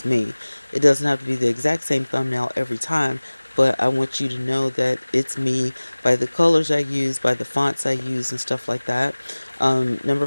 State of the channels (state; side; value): inverted; both; correlation -1.00